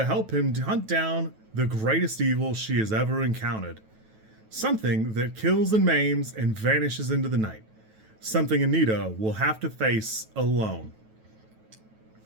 help him hunt down the greatest evil she has ever encountered. Something that kills and maims and vanishes into the night. Something Anita will have to face alone.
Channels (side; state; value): left; late; 9.2 ms